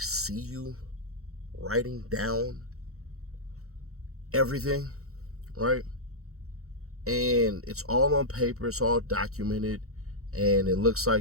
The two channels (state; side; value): late; left; 0.64 ms